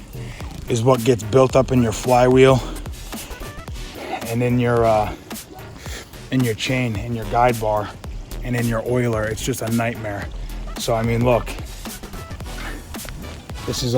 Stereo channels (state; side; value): identical; both; correlation 1.00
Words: is what gets built up in your flywheel and in your chain, in your guide bar, and in your oiler. It's just a nightmare. So I mean, look, this is